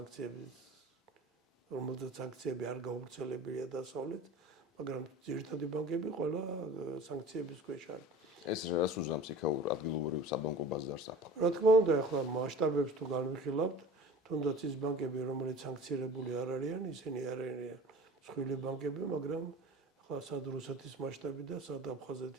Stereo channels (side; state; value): both; normal; correlation 0.39